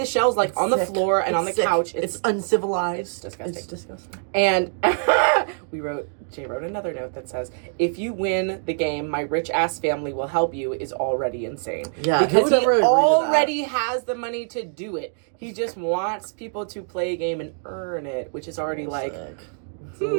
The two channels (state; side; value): silent; left; digital silence